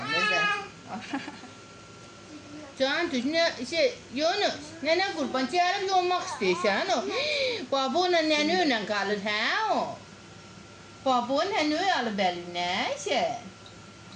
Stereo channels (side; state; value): both; identical; correlation 1.00